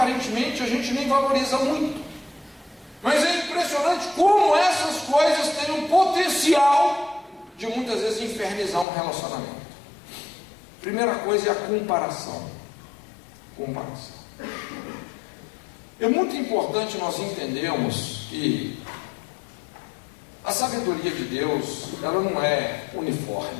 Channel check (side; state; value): right; drops out; at 8.8 s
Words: a gente nem valoriza muito, mas é impressionante como essas coisas têm um potencial de muitas vezes infernizar um relacionamento. Primeira coisa é a comparação. É muito importante nós entendermos que a sabedoria de Deus, ela não é